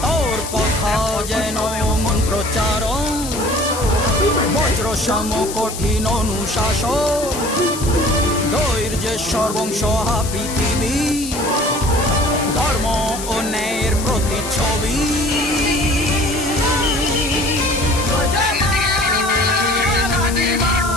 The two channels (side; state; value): left; noise; hiss, 9 dB below the sound